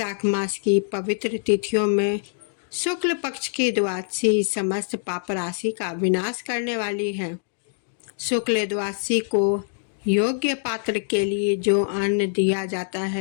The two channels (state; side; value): silent; right; digital silence